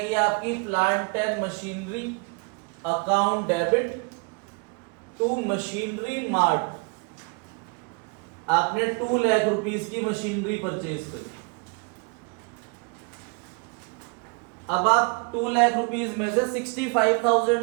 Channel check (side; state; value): left; quieter; 32.1 dB